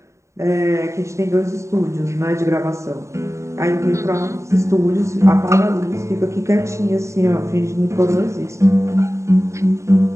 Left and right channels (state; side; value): late; left; 0.14 ms